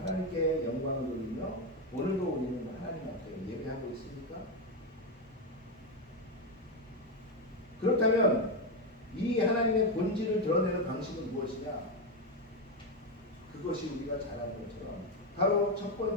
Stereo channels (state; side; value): normal; both; correlation 0.08